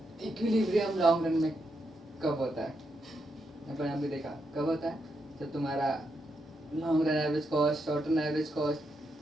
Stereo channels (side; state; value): both; normal; correlation 0.82